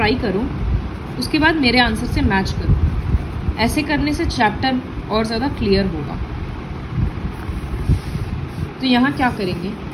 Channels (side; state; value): both; identical; correlation 1.00